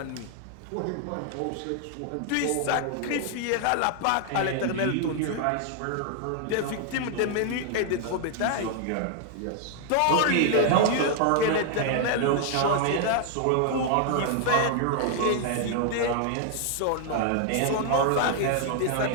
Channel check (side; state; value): both; different; correlation 0.00